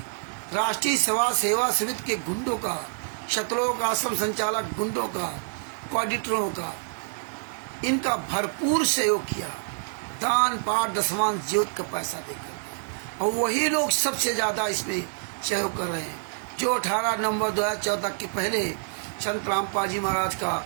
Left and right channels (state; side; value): silent; left; digital silence